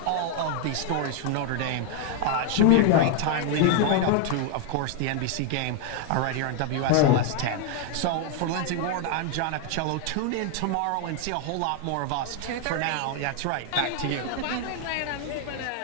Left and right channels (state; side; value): different; both; correlation 0.00